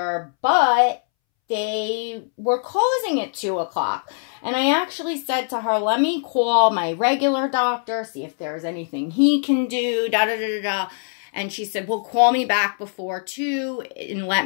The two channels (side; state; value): right; silent; 64 dB below the other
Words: But they were closing at 2 o'clock. And I actually said to her, let me call my regular doctor, see if there's anything he can do, da-da-da-da-da. And she said, well, call me back before 2 and let